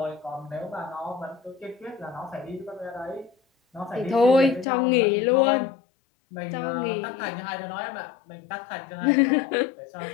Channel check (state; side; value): drops out; right; at 4.7 s